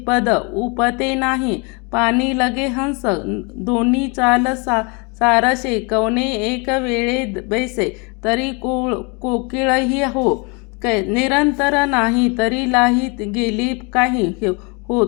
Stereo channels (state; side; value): quieter; right; 31.3 dB